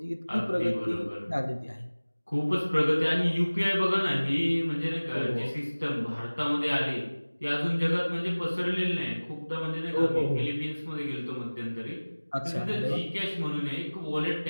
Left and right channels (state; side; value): inverted; both; correlation -1.00